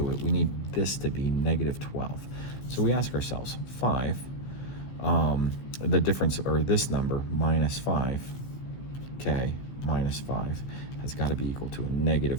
it, we need this to be -12. So we ask ourselves, 5, the difference, or this number, -5, k minus 5, has got to be equal to a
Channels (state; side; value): late; right; 15 ms